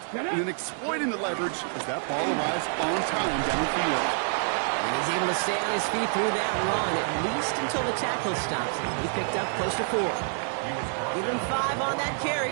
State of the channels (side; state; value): left; silent; 60 dB below the other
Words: and then exploiting the leverage as that ball arrives on time downfield. And he's able to stay on his feet through that run, at least until the tackle stops him. He picked up close to 4. Give him 5 on that